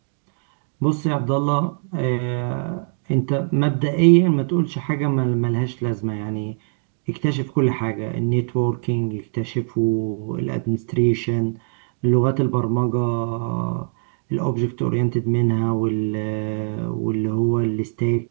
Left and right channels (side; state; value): left; silent; digital silence